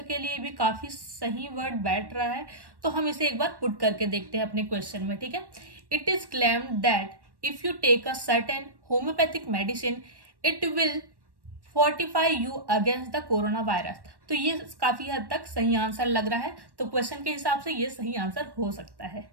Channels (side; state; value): left; late; 1.1 ms